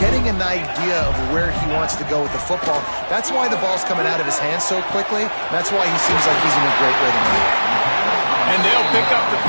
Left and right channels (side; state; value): both; inverted; correlation -1.00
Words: an idea of where he wants to go with the football. That's why the ball's coming out of his hands so quickly. That's why he seems like he's in a great rhythm. And they'll pick up the